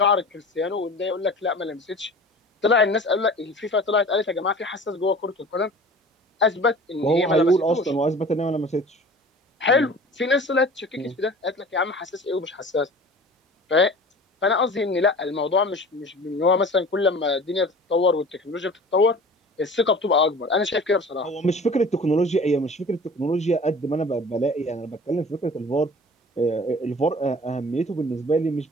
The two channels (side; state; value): both; normal; correlation 0.42